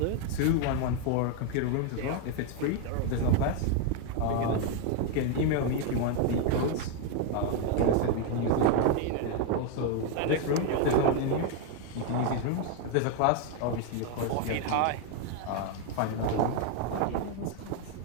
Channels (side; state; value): both; different; correlation 0.01